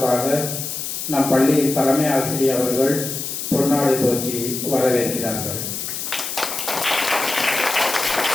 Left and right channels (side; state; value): left; noise; hiss, 5 dB below the sound